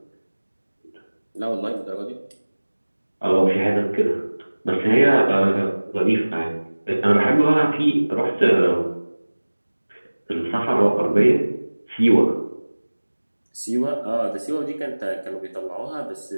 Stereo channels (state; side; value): inverted; both; correlation -1.00